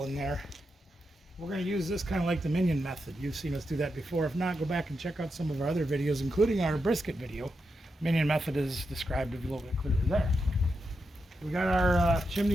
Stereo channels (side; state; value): both; normal; correlation 0.86